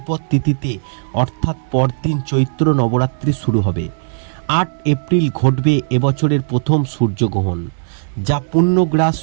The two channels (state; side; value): silent; left; digital silence